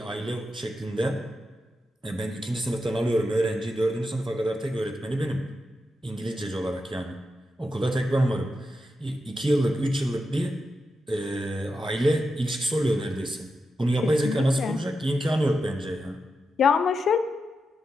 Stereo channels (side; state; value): both; normal; correlation 0.88